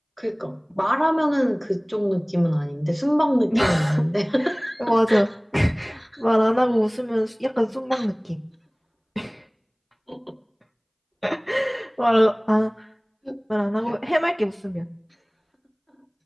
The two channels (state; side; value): identical; both; correlation 1.00